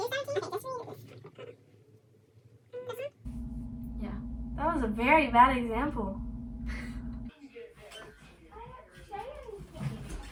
Yeah. That was a very bad example.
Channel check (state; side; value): identical; both; correlation 1.00